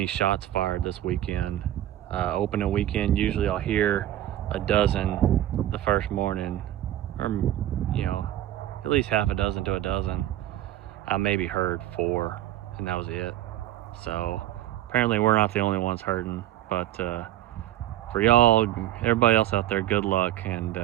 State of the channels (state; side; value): quieter; left; 13.3 dB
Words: shots fired this weekend. Opening weekend, usually I'll hear a dozen the first morning, or you know, at least half a dozen to a dozen. I maybe heard 4, and that was it. So apparently we're not the only ones hurting, but for y'all, everybody else out there, good luck, and